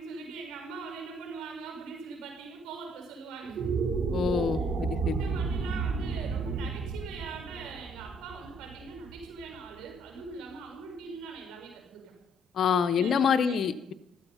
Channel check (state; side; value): normal; both; correlation 0.65